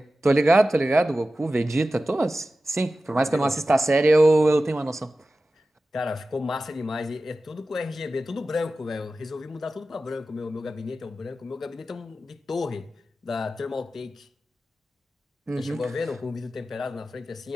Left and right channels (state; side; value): normal; both; correlation 0.94